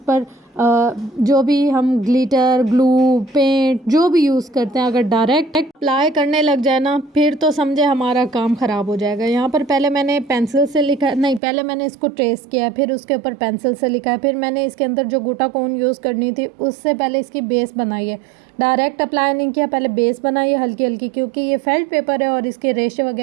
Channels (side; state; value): left; drops out; at 11.4 s